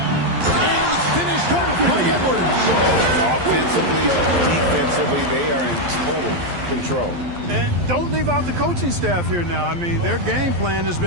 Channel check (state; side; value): late; left; 11 ms